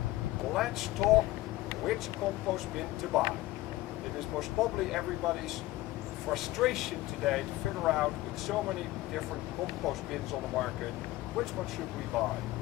Let's talk which compost bin to buy. It is most probably everybody's frustration today to figure out with so many different compost bins on the market, which one should we buy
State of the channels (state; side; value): quieter; right; 17.4 dB